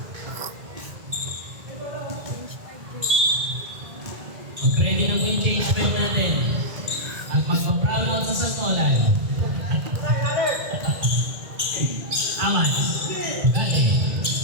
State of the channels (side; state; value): left; late; 2.0 ms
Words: Mag-ready na po yung change pen natin. At magpa-proud out sa Santolan. Amats. Gati.